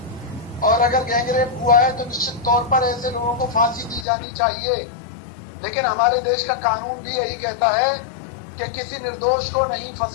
और अगर गैंगरेप हुआ है तो निश्चित तौर पर ऐसे लोगों को फांसी दी जानी चाहिए। लेकिन हमारे देश का कानून भी यही कहता है कि किसी निर्दोष को नहीं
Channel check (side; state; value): right; drops out; at 4.0 s